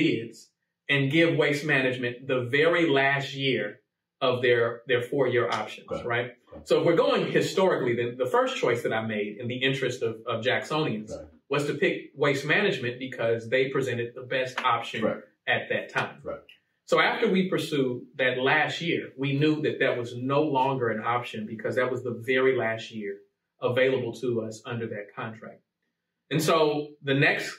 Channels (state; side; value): identical; both; correlation 1.00